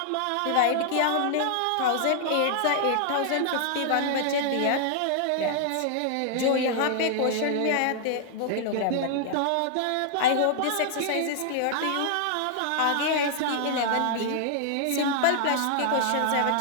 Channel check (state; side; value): different; both; correlation -0.01